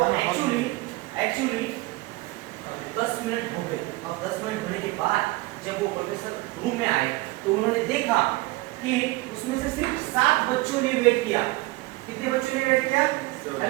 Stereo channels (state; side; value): quieter; left; 21.4 dB